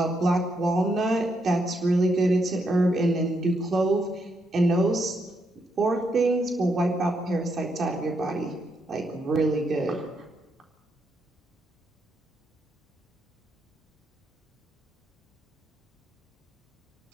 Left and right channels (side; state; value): both; normal; correlation 0.79